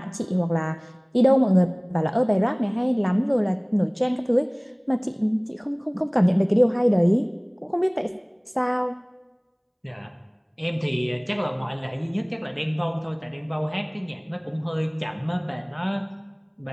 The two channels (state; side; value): identical; both; correlation 1.00